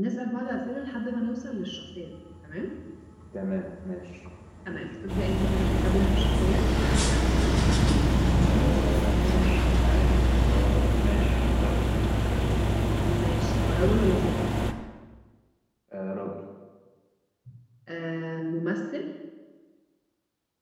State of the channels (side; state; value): both; identical; correlation 1.00